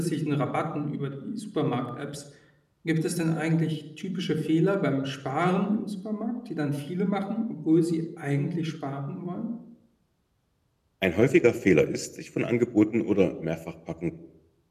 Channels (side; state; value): both; identical; correlation 1.00